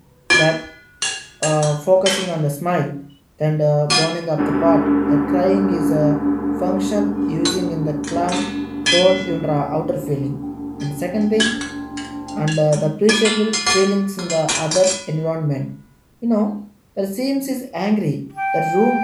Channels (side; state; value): both; identical; correlation 1.00